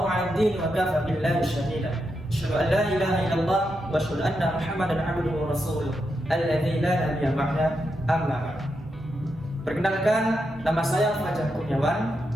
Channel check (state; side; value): normal; both; correlation 0.85